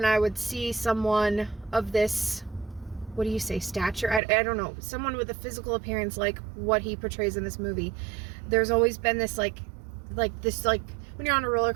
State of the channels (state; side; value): drops out; left; at 4.2 s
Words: I would see someone of this, what do you say, stature? I don't know. Someone with a physical appearance like what he portrays in this movie. There's always been this like when you're on a roller